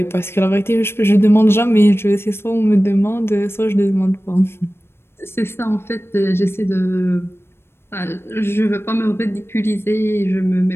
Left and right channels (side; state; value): right; late; 0.12 ms